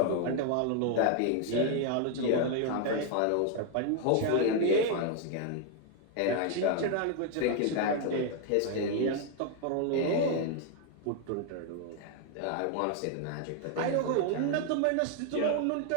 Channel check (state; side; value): different; both; correlation 0.00